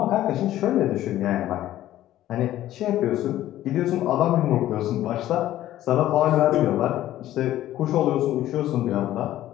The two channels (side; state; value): right; quieter; 13.7 dB